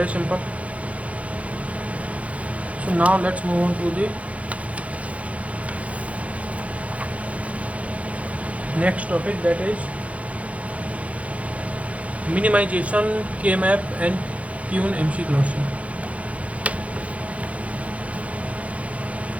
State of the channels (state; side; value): late; left; 0.065 ms